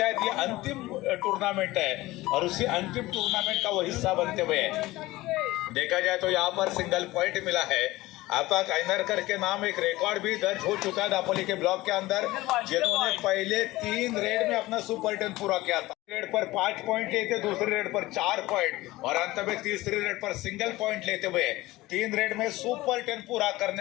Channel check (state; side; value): quieter; right; 18.6 dB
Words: ये अंतिम टूर्नामेंट है और उसी अंतिम टूर्नामेंट का वो हिस्सा बनते हुए देखा जाए तो यहाँ पर सिंगल पॉइंट मिला है। आपा काइनरकर के नाम एक रिकॉर्ड भी दर्ज हो चुका है दापोली के ब्लॉक के अंदर, जिन्होंने पहले 3 रेड में अपना सुपर 10 पूरा किया था। रेड पर 5 पॉइंट लेते, दूसरी रेड पर 4 पॉइंट और अंत में तीसरी रेड पर सिंगल पॉइंट लेते हुए 3 रेड में सुपर 10 पूरा